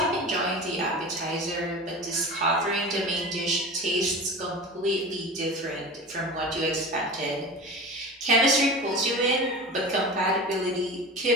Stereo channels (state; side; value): normal; both; correlation 0.33